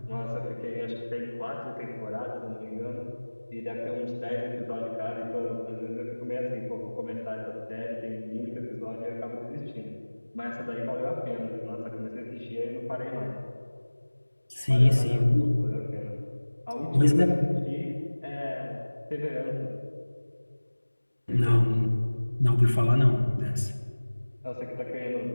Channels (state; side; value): inverted; both; correlation -1.00